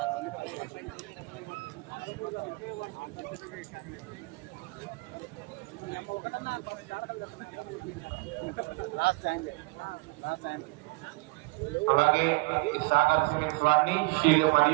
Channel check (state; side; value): quieter; left; 26.3 dB